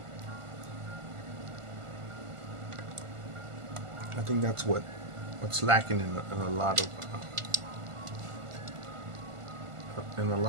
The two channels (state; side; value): late; left; 1.4 ms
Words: I think that's what's lacking in a lot